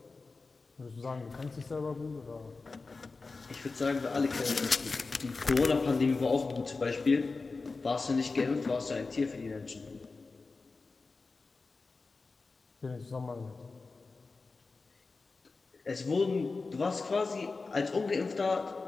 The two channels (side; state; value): right; quieter; 4.0 dB